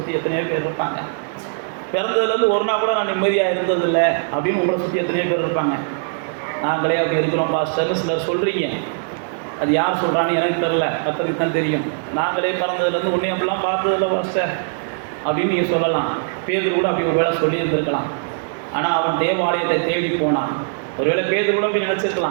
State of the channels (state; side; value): silent; left; digital silence